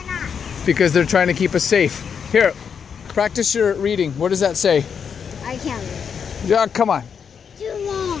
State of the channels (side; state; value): right; quieter; 6.9 dB